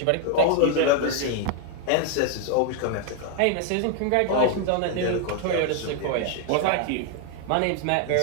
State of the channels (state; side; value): different; both; correlation 0.00